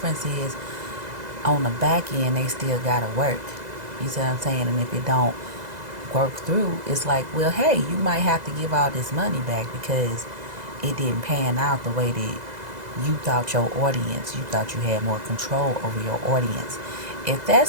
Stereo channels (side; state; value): left; late; 2.0 ms